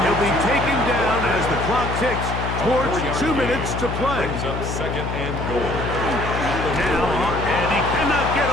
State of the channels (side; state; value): left; noise; hum, 4 dB below the sound